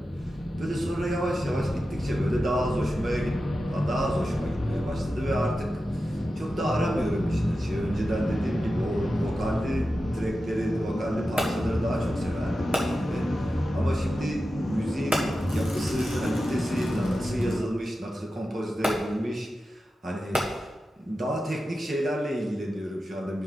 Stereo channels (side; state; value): both; normal; correlation 0.92